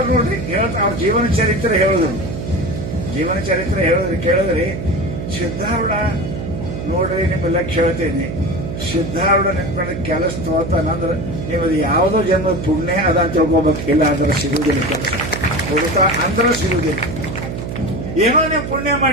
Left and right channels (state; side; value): noise; right; hum, 6 dB below the sound